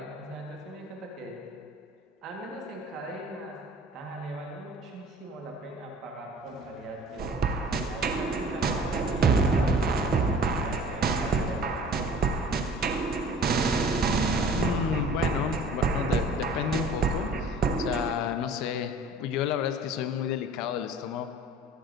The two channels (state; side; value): normal; both; correlation 0.47